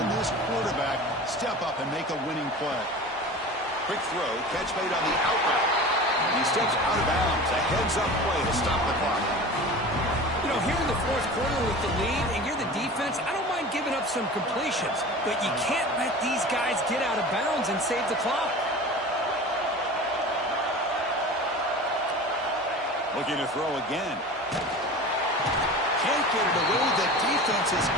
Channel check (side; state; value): both; normal; correlation 0.36